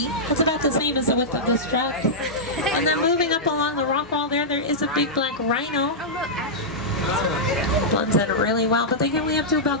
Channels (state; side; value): normal; both; correlation -0.10